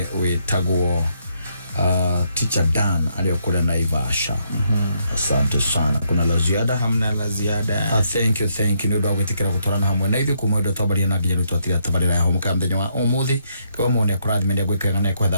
witagwo Teacher Dan aliyokula Naivasha. Asante sana. Kuna la ziada? Hamna la ziada. Thank you ndio gwitikira gutorana hamwe na ithu kumwe ndo twabaria na nginya twatira tabarira ya Humuka mthenya wa umuthi kwa mone kurathi mendia gwikanga na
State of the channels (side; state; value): both; inverted; correlation -0.75